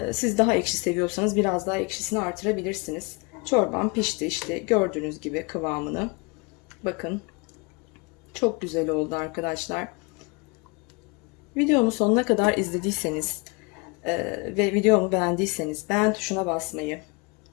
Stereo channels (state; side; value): quieter; right; 29.3 dB